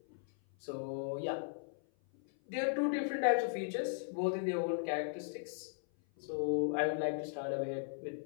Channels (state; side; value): silent; right; 53 dB below the other